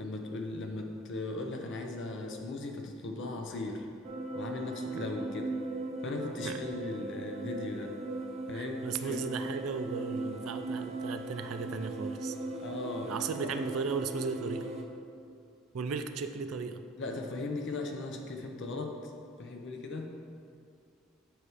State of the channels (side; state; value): both; normal; correlation 0.46